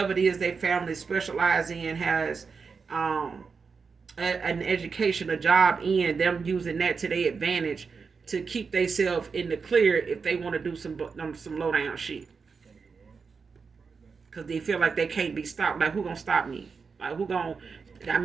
it is their family specialize in, has an education, a job in, them using that to their advantage to keep themselves in the clear if they want to do some low down shit. Because they feel like they can't be stopped. Like, who gonna stop me? Like, who gonna? I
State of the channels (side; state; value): left; quieter; 5.2 dB